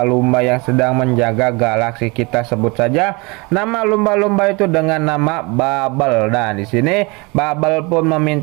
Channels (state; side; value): quieter; left; 27.4 dB